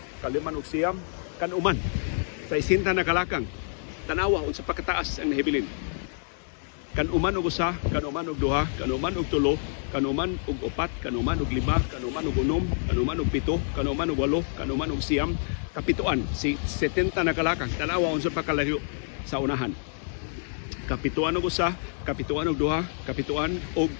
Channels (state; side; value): silent; right; 60 dB below the other